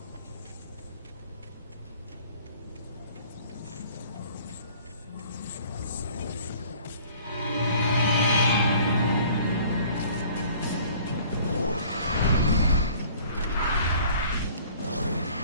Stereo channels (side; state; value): both; inverted; correlation -0.51